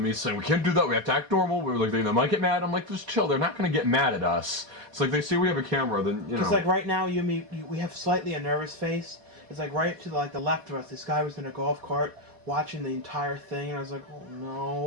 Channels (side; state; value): left; late; 4.1 ms